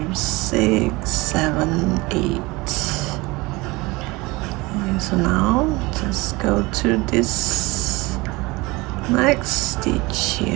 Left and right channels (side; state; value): left; quieter; 23.1 dB